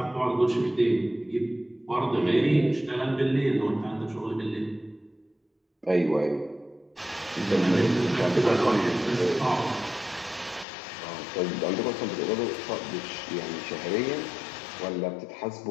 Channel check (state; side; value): drops out; right; at 10.7 s